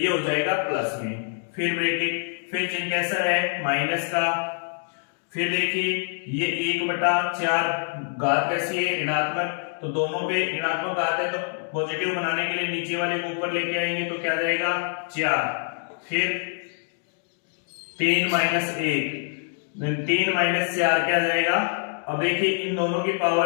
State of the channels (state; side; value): silent; right; digital silence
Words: हो जाएगा प्लस में। फिर ब्रैकेट, फिर चिन्ह कैसा है, माइनस का। फिर देखिए ये 1/4 घात कैसी है, ऋणात्मक, तो दोनों पे ऋणात्मक घात है, तो पॉजिटिव बनाने के लिए नीचे वाले को ऊपर लेके आएंगे, तो क्या जाएगा 4। फिर 3 - 1, 3 - 4 क्या जाएगा। अब देखिए इन दोनों की